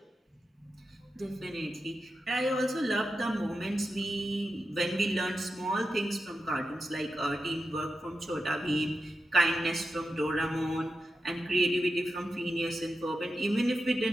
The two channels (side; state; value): both; normal; correlation 0.90